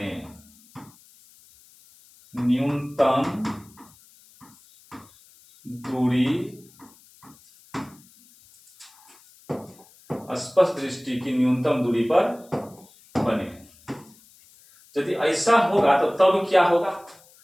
न्यूनतम दूरी, स्पष्ट दृष्टि की न्यूनतम दूरी पर बने। यदि ऐसा होगा तो तब क्या होगा,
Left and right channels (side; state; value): left; noise; hiss, 27 dB below the sound